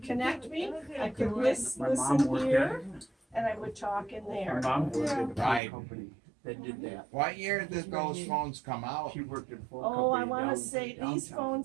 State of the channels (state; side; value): drops out; left; at 5.6 s